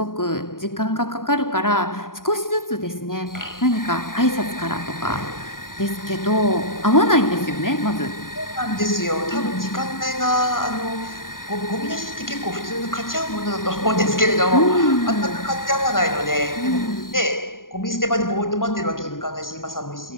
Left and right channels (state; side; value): late; right; 0.90 ms